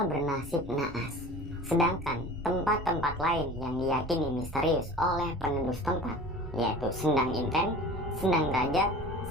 bernasib naas. Sedangkan tempat-tempat lain yang diyakini misterius oleh penduduk setempat, yaitu Sendang Inten, Sendang Derajat,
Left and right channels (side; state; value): both; normal; correlation 0.40